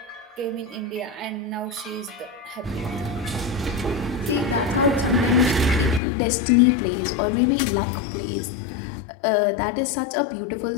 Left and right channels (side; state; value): right; drops out; at 6.0 s